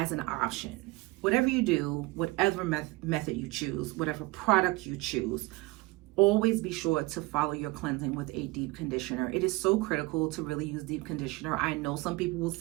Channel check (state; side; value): quieter; left; 22.1 dB